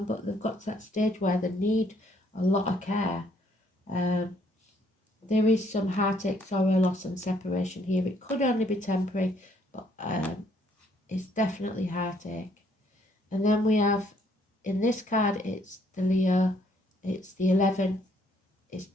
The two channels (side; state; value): both; normal; correlation 0.66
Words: but they've got to that stage where they need a lot of care. There is some heartache, sorrow, loss and separation here. It could only be temporary, but it's definitely heartache. And then we have, in this card, it's the Leo, it's the 11, it's